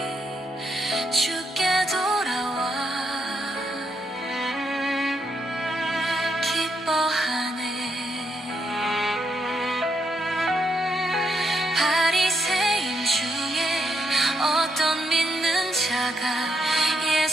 주께 돌아와 기뻐하네. 바리새인 중에 어떤 믿는 자가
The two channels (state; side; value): normal; both; correlation 0.77